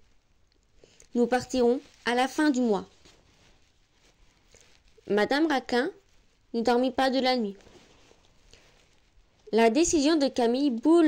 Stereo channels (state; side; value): identical; both; correlation 1.00